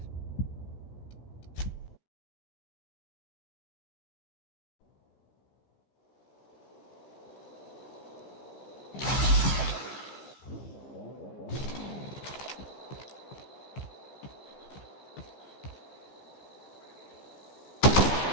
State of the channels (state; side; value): late; right; 15 ms